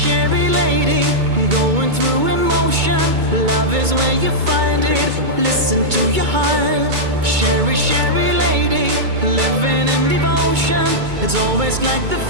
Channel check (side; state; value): left; late; 2.2 ms